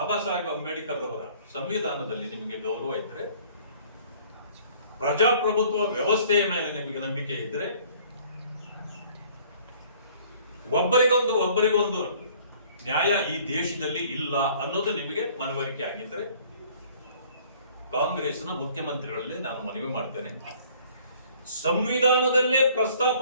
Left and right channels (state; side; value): inverted; both; correlation -0.55